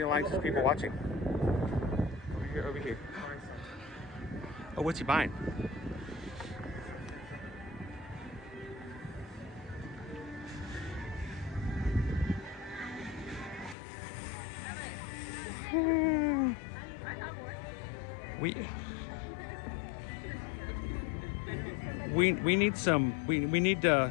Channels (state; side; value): drops out; right; at 13.8 s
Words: likes as people watching. Over here. Oh, what's he buying? We need some we